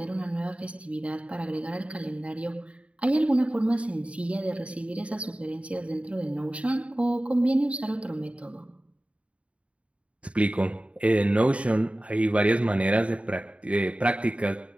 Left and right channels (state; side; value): late; left; 0.063 ms